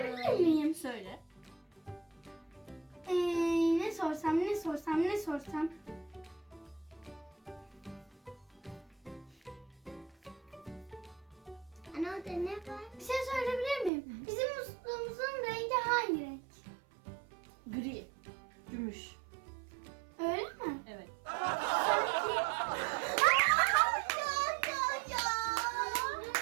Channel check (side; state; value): left; drops out; at 13.9 s